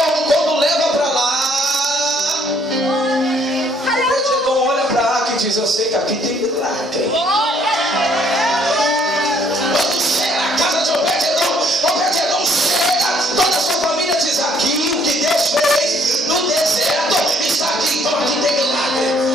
Quando leva para lá, Obed-edom olha para a arca e diz: eu sei que aqui tem milagre. Quando chega na casa de Obed-edom, Obed-edom chega, toda a sua família diz: aqui o que Deus fez no deserto está aqui, então aqui tem milagre.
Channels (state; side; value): normal; both; correlation 0.64